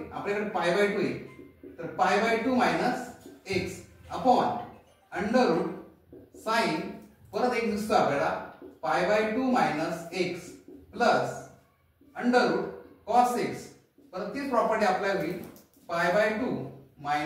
आपल्याकडे pi by 2 आहे, तर pi by 2 minus x upon under root sine परत एक दिसतो आपल्याला pi by 2 minus x plus under root cos x. परत तीच प्रॉपर्टी अप्लाय होईल pi by 2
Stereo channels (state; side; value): identical; both; correlation 1.00